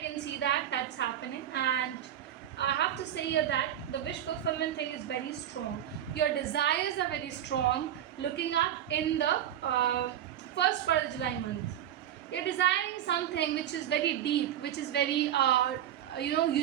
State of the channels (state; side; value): quieter; left; 11.0 dB